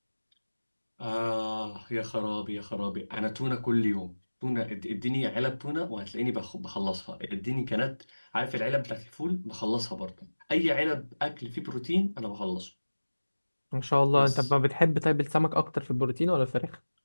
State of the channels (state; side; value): inverted; both; correlation -1.00